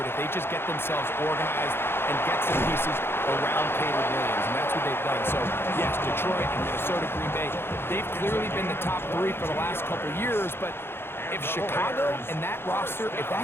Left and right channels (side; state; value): right; late; 0.11 ms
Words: if they just get themselves organized and get some pieces around Caleb Williams, and that's what they've done. So, yes, Detroit and Minnesota, Green Bay, they've clearly been the top three for the last couple years, but if Chicago and that roster, if